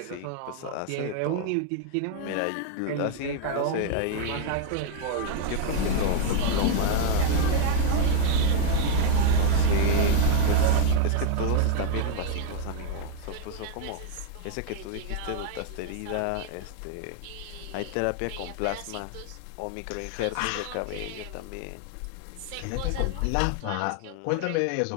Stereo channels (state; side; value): different; both; correlation 0.00